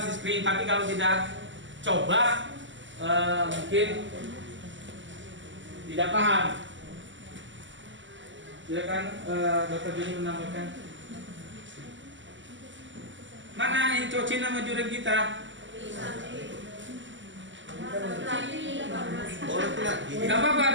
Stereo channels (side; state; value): left; late; 0.54 ms